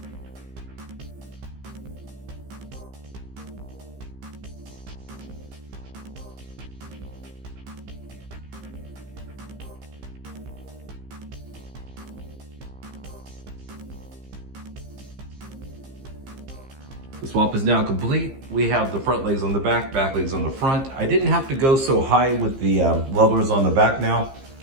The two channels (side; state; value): left; late; 15 ms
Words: The swap is now complete. We have the front legs on the back legs on the front. I didn't have to go so high with the levelers on the back now.